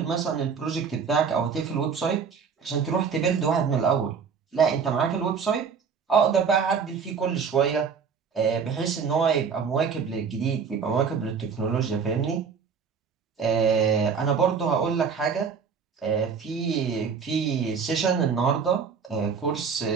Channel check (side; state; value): left; quieter; 6.1 dB